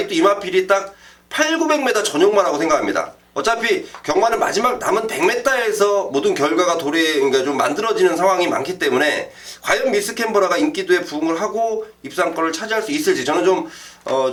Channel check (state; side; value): identical; both; correlation 1.00